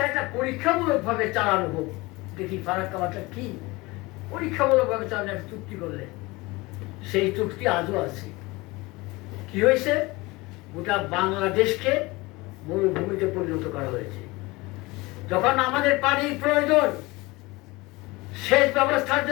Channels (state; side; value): quieter; right; 22.7 dB